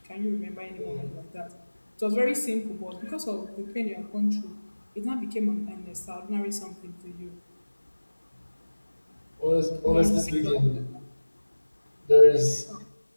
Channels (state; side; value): inverted; both; correlation -1.00